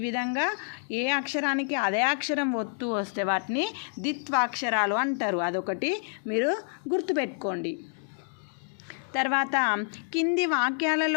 విధంగా ఏ అక్షరానికి అదే అక్షరం ఒత్తు వస్తే వాటిని ద్విత్వాక్షరాలు అంటారు. అదొకటి మీరు గుర్తుపెట్టుకోండి. తర్వాత కింది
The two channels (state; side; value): silent; right; 59 dB below the other